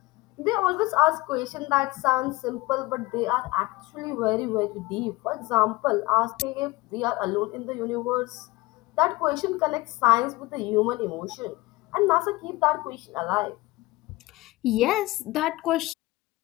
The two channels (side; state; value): right; quieter; 20.7 dB